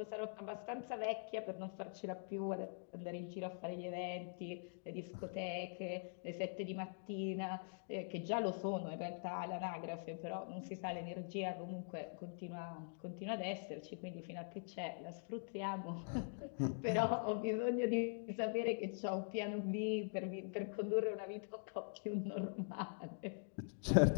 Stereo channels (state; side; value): silent; right; digital silence